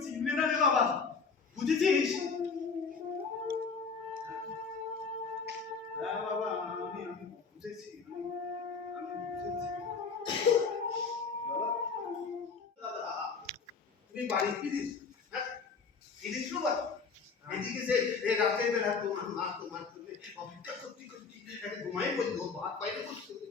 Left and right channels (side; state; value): right; quieter; 5.1 dB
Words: চিনবে না রে বাবা, বুঝেছিস? হ্যাঁ বাবা, আমি বুঝেছি, আমি বুঝেছি বাবা। তুমি বাড়ি ফিরিস? হ্যাঁ ফিরিস তো বাবা। এদিকে যে রাতে বেলা তোমার মা তোমার জন্য অপেক্ষা করতে করতে একটা ঘুমাই বলবো, ভাত বাইরে বসতে